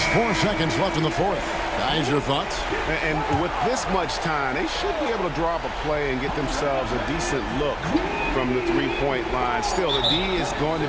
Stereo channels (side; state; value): both; identical; correlation 1.00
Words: 4 seconds left in the fourth. Guys, your thoughts? And with this much time, they should be able to draw up a play and get themselves a decent look from the three-point line. Still, the D is going to